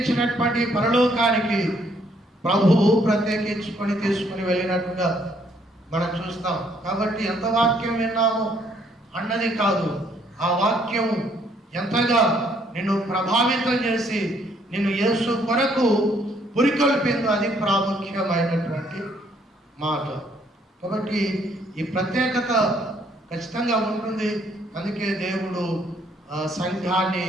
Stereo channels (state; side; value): normal; both; correlation 0.67